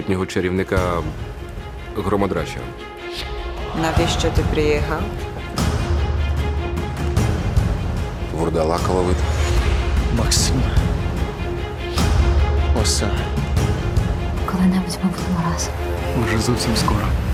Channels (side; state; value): both; identical; correlation 1.00